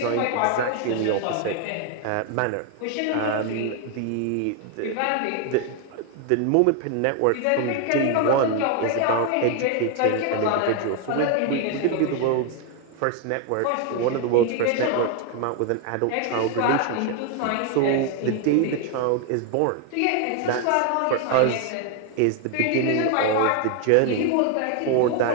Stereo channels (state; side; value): different; both; correlation 0.01